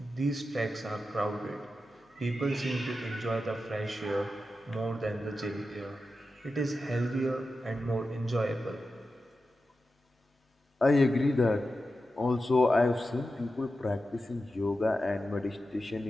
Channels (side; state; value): both; normal; correlation 0.91